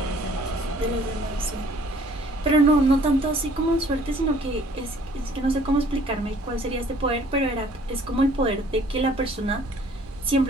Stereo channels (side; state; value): both; normal; correlation 0.56